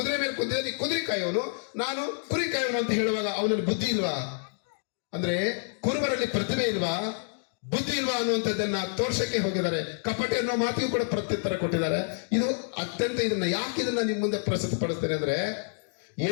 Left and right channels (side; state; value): right; silent; 59 dB below the other